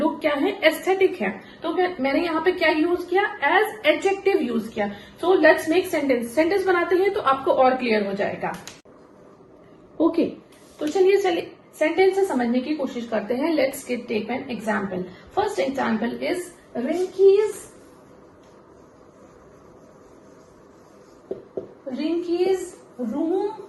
क्या है? एस्थेटिक है। तो मैंने यहाँ पे क्या यूज किया? एज एडजेक्टिव यूज किया। So let's make sentence. Sentence बनाते हैं तो आपको और क्लियर हो जाएगा। ओके, तो चलिए सेंटेंस से समझने की कोशिश करते हैं। Let's take an example. First example is Rinki's room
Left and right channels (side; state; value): both; identical; correlation 1.00